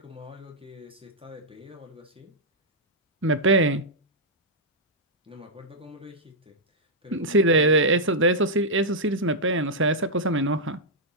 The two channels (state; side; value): normal; both; correlation -0.08